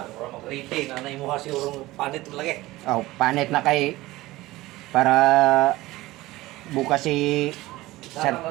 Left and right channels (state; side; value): quieter; left; 18.4 dB